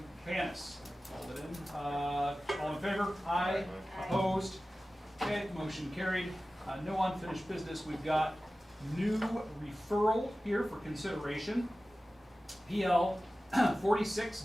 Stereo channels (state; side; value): normal; both; correlation 0.96